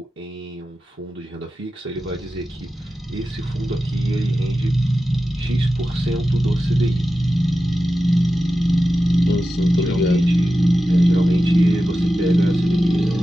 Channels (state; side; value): normal; both; correlation 0.93